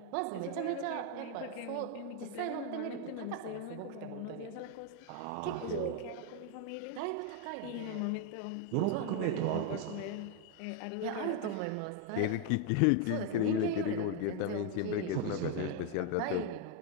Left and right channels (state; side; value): different; both; correlation 0.01